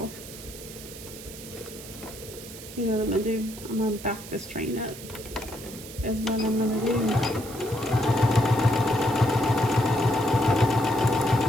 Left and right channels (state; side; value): noise; right; hiss, 14 dB below the sound